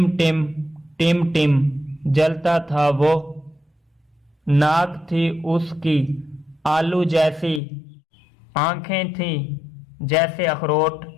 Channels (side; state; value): right; drops out; at 7.6 s